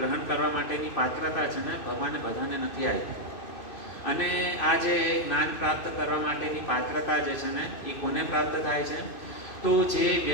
કરવા માટેની પાત્રતા છે ને ભગવાને બધાને નથી આપી. અને આ જે જ્ઞાન પ્રાપ્ત કરવા માટેની પાત્રતા જે છે ને એ કોને પ્રાપ્ત થાય છે? તો જે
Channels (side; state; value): right; late; 2.6 ms